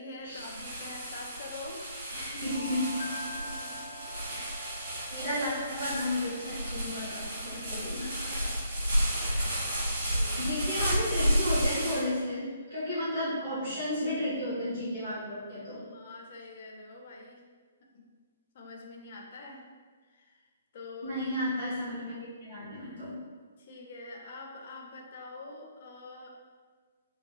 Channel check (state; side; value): inverted; both; correlation -0.72